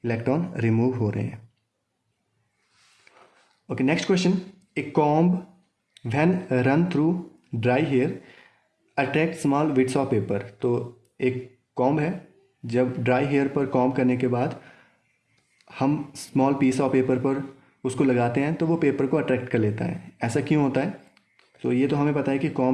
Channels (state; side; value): identical; both; correlation 1.00